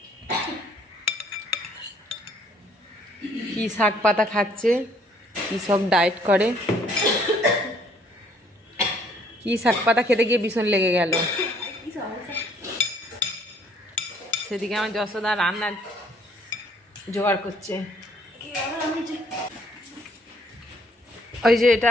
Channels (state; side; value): normal; both; correlation 0.63